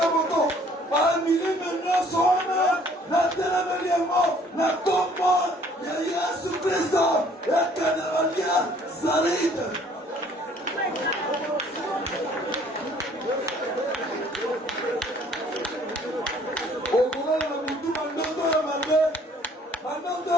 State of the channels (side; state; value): both; normal; correlation 0.58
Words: moko. Bamilime nyonso wana natelemeli yango na kombo ya Yesu Kristo ekende balia salite. Okolala na mutu mandoto ya mabe, mandoto